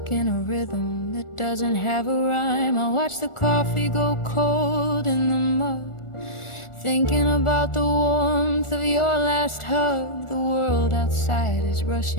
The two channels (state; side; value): late; right; 1.4 ms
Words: in a rhythm that doesn't have a rhyme. I watch the coffee go cold in the mug, thinking about the warmth of your last hug. The world outside is